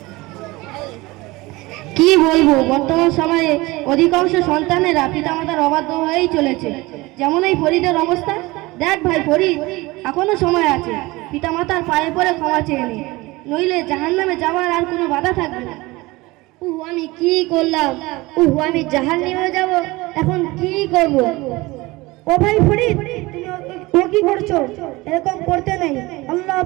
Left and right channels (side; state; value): left; quieter; 21.6 dB